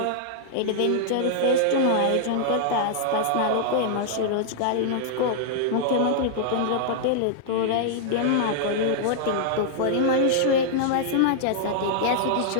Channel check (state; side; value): different; both; correlation -0.01